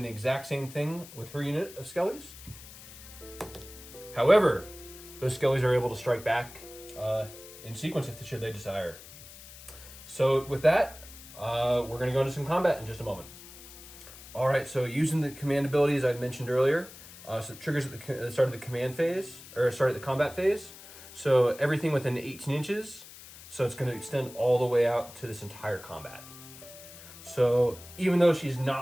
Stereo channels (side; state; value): left; noise; hiss, 17 dB below the sound